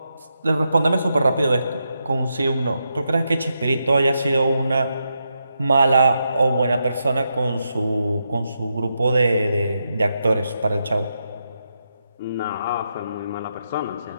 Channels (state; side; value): inverted; both; correlation -0.84